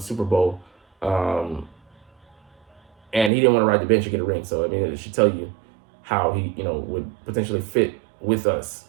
Bowl, and he didn't want to ride the bench and get a ring. So I mean, it should tell you how he would potentially fit with us,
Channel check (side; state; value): left; drops out; at 3.3 s